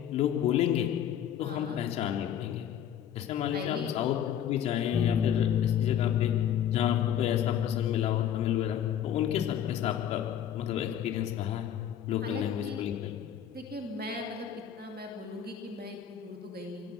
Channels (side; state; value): right; quieter; 9.7 dB